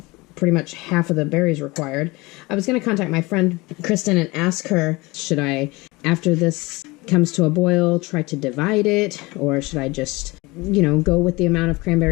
pretty much half of the berries required, I was going to contact my friend Kristin and ask her, should I, after this comes to a boil, try to divide it, or should I just, go with the amount of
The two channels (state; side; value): quieter; right; 23.2 dB